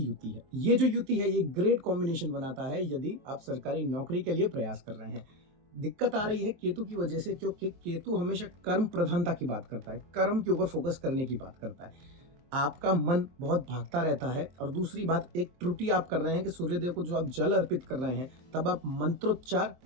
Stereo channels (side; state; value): left; late; 23 ms